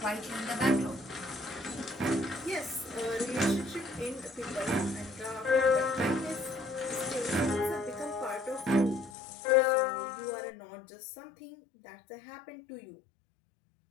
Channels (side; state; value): right; drops out; at 9.1 s